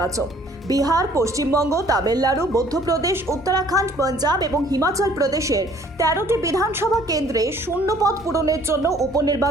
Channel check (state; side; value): normal; both; correlation 0.57